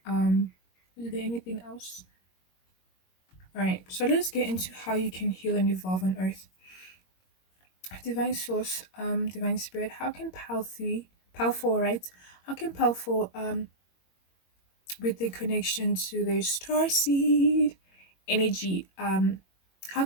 um is there anything else? All right, so let's get into how you can heal and evolve on earth. Divine source, divine spirit, how can pal 4, right? How can pal 4, with the connection to their star seed energy, how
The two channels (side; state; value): right; late; 21 ms